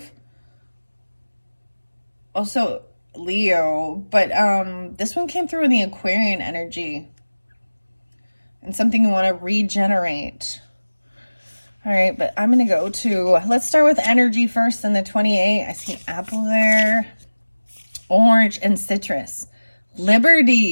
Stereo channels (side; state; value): both; inverted; correlation -1.00